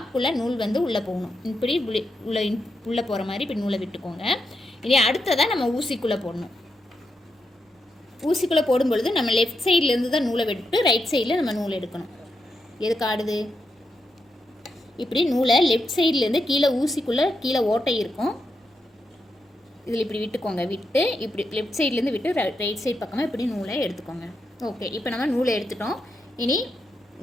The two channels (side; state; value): both; normal; correlation 0.84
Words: நூல் வந்து உள்ளே போகணும். இப்படி உள்ளே போகிற மாதிரி இப்படி நூலை விட்டுக்கோங்க. இனி அடுத்ததாக நம்ம ஊசிக்குள்ளே போடணும். ஊசிக்குள்ளே போடும்பொழுது நம்ம லெஃப்ட் சைட்லேருந்து தான் நூலை விட்டு ரைட் சைடில் நம்ம நூல் எடுக்கணும். எதுக்கு ஆடுது? இப்படி நூலை லெஃப்ட் சைட்லேருந்து கீழே ஊசிக்குள்ளே கீழே ஓட்டை இருக்கும், இதில் இப்படி விட்டுக்கோங்க. விட்டு இப்படி லெஃப்ட் சைட்லேருந்து விட்டு ரைட் சைட் பக்கமாக இப்படி நூலை எடுத்துக்கோங்க. ஓகே, இப்போ நம்ம நூலை எடுத்துட்டோம். இனி